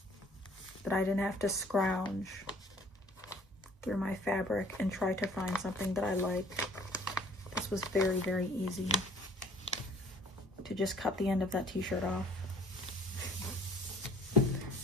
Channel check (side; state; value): both; normal; correlation 0.54